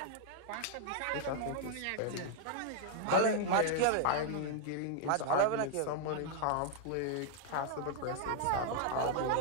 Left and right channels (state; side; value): different; both; correlation 0.00